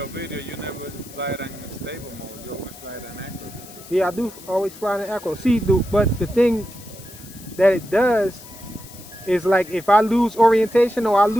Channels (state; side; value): noise; left; hiss, 18 dB below the sound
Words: video, you never fly it in stable mode. You always fly it in acro. Yeah, I do always fly in acro. See, but the thing that it does is like if I lose orientation or I